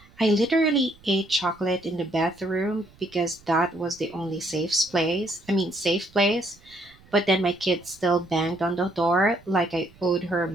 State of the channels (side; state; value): right; noise; rumble, 27 dB below the sound